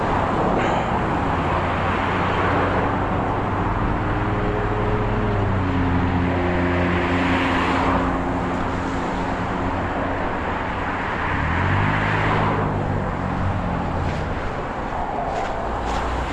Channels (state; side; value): identical; both; correlation 1.00